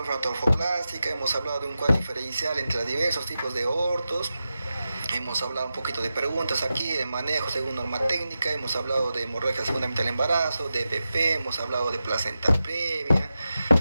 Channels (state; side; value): inverted; both; correlation -0.91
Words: hemos hablado de un cuadro diferencial entre los diversos tipos de abortos. Hemos hablado un poquito de preguntas aquí, de manejo según norma técnica, hemos hablado de hemorragia segunda mitad del embarazo, de DPP, hemos hablado de placenta previa,